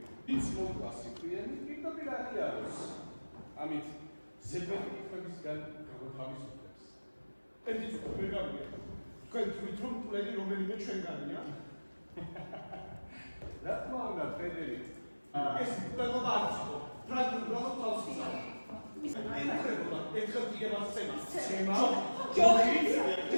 ის მოკლასი პირი პირდაპირ აღიაროს. ამით ზედმეტი კითხვებისგან გამოთავისუფლებს. ერთი ცოტა ვერ გავიგე. თქვენ თვით რომ პლენი რომელიმე ჩვენგანია? რა თქმა უნდა, ფრედერიკ. ეს პლენობა არ იყო. ფრანგული გრამატ თავს ისა. ინკრებულა, ერთხელ იგებას ცემა. ცემა? ჯოხი?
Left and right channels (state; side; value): inverted; both; correlation -1.00